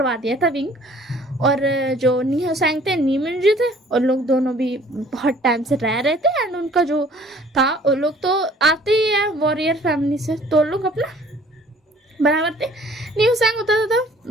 दिया था विंग। और जो नीहा सैंग थे, नीमिन जी थे, और लोग दोनों भी बहुत टाइम से रह रहे थे, एंड उनका जो था वो लोग तो आते ही है वॉरियर फैमिली से, तो लोग अपना बराबर थे। न्यू सैंग होता था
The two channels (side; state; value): both; normal; correlation 0.55